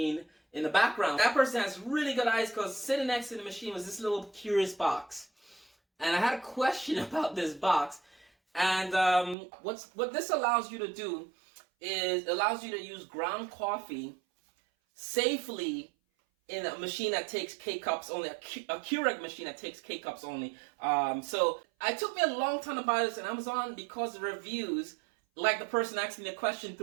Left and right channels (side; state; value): left; drops out; at 9.3 s